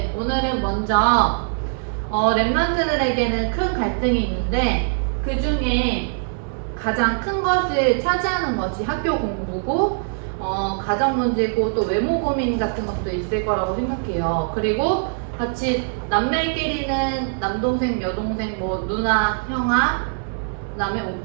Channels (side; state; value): left; silent; 64 dB below the other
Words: 오늘은 먼저 렘넌트들에게는 큰 갈등이 있는데 그 중에 가장 큰 것을 차지하는 것이 학교 공부고 가정 문제고 또 외모 고민 같은 것도 있을 거라고 생각해요. 그리고 같이 남매끼리는 남동생, 여동생, 뭐 누나, 형아, 그다음에